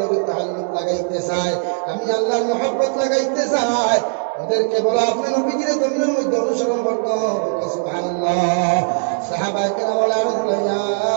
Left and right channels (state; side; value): silent; left; digital silence